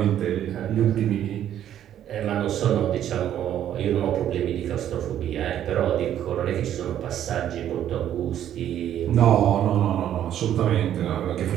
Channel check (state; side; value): quieter; left; 10.8 dB